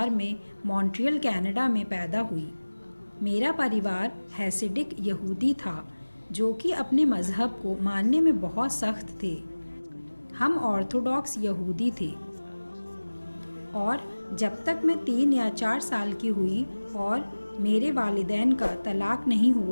میں مونٹریل کینیڈا میں پیدا ہوئی. میرا پریوار ہیسیڈک یہودی تھا جو کہ اپنے مذہب کو ماننے میں بہت سخت تھے. ہم آرتھوڈاکس یہودی تھے اور جب تک میں 3 یا 4 سال کی ہوئی اور میرے والدین کا طلاق نہیں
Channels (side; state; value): both; inverted; correlation -1.00